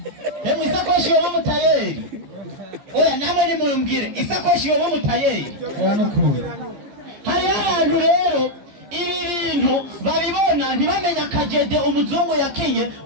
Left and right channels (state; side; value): late; left; 14 ms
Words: Isakoshi yo mutayeri. Oya namwe ni mumbwire isakoshi yo mutayeri. Hari ahantu rero ibi bintu babibona ntibamenya kajede umuzungu yakinye